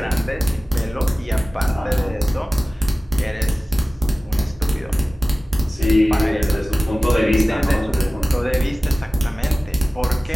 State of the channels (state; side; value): normal; both; correlation 0.97